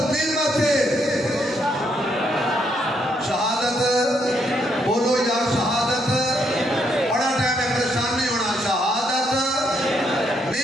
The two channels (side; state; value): both; normal; correlation 0.74